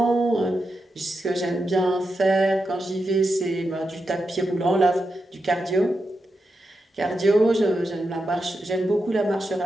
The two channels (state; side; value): normal; both; correlation 0.87